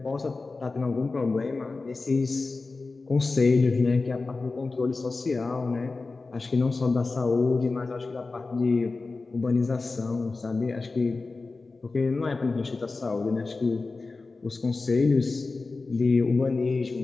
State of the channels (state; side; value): quieter; right; 3.8 dB